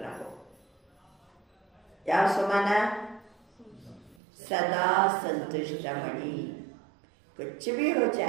रहो. क्या स्वमान? सदा संतुष्ट मणि. कुछ भी हो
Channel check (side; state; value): left; drops out; at 4.2 s